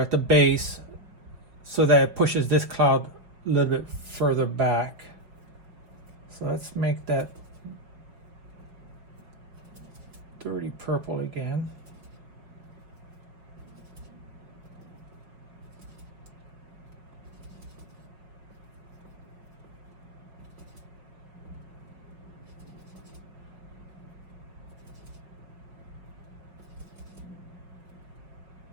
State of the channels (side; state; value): left; late; 5.4 ms